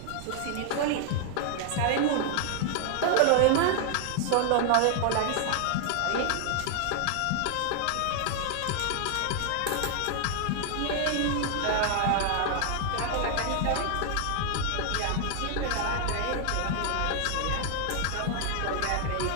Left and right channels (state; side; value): different; both; correlation 0.00